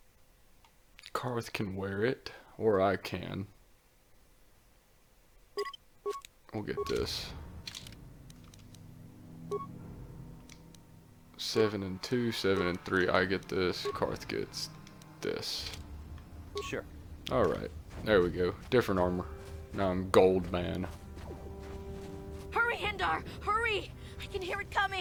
Karth can wear it, or I can. We'll get this. 7 and 2, 7 and 3. I get this. Karth gets this. Sure. Alright. There we go. Different armor. Now I'm gold man. Hurry, Hindar! Hurry! I can hear it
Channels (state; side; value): identical; both; correlation 1.00